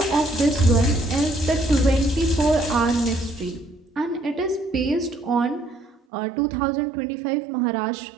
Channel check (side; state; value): left; drops out; at 6.0 s